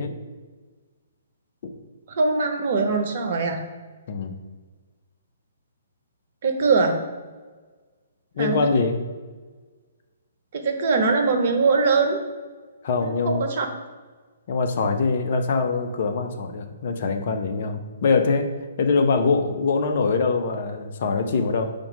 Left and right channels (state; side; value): inverted; both; correlation -0.63